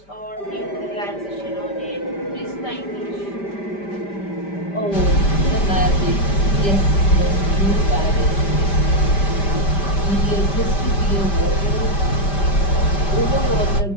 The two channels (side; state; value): right; late; 5.1 ms